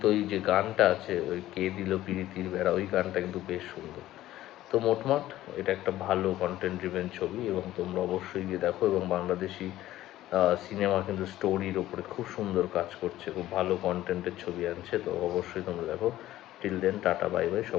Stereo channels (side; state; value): right; quieter; 14.6 dB